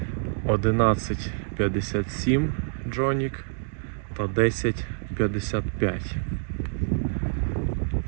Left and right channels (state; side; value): silent; left; digital silence